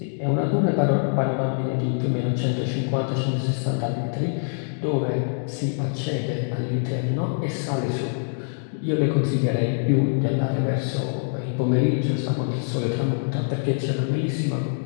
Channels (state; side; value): silent; right; digital silence